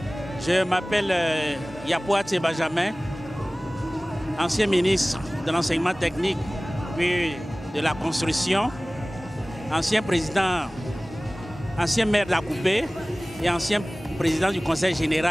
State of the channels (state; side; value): normal; both; correlation 0.98